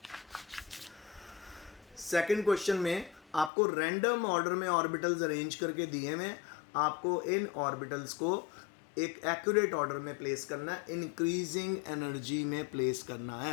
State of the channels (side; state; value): right; drops out; at 3.5 s